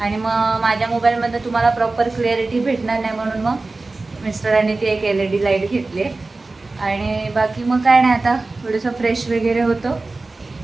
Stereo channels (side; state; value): left; quieter; 3.4 dB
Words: आणि मग माझ्या मोबाईलमध्ये तुम्हाला प्रॉपर क्लिअरिटी भेटणार नाही, म्हणून मग मिस्टरांनी ती एक LED लाईट घेतली आणि बाकी मग काय नाही, आता थोडंसं फ्रेश वगैरे होतो